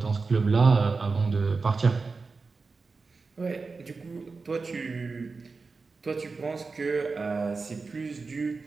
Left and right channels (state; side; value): quieter; left; 4.3 dB